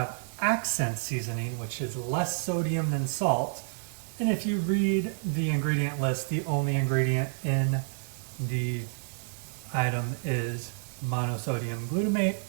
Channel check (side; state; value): left; silent; digital silence